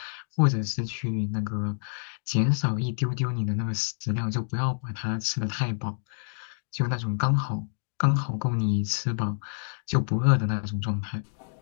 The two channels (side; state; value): right; silent; digital silence